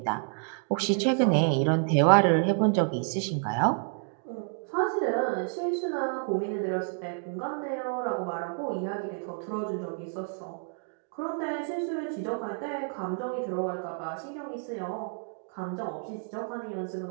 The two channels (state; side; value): silent; left; 58 dB below the other